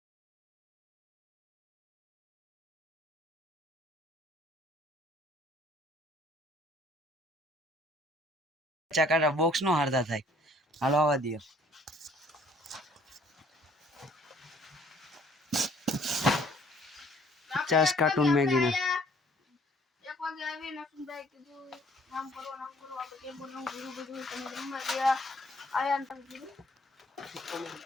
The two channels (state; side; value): normal; both; correlation 0.59